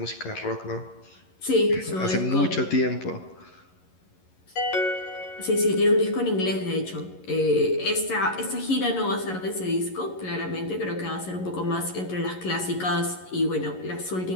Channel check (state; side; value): late; right; 11 ms